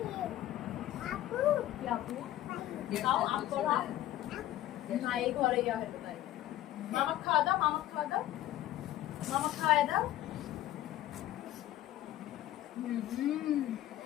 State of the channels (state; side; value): quieter; right; 14.0 dB